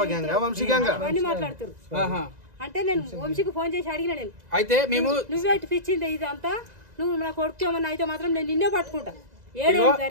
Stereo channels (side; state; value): left; late; 2.0 ms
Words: అవన్నీ మాట్లాడుతారు. అంటే నేను వంశీకి ఫోన్ చేసి అడిగిన నేను అయితే మేము నువ్వే పిచ్చింది ఇదంతా నువ్వు నా కొడుకు ఏమన్నా అయితే మాత్రం నేను నిన్నే పట్టుకుంటా.